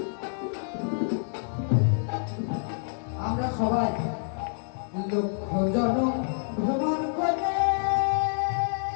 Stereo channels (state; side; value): silent; right; 60 dB below the other